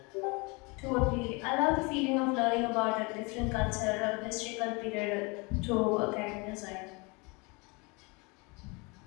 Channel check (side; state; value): right; quieter; 28.4 dB